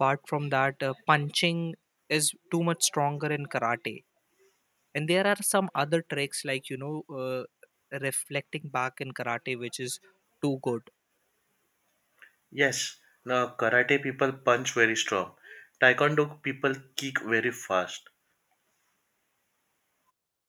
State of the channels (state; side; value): identical; both; correlation 1.00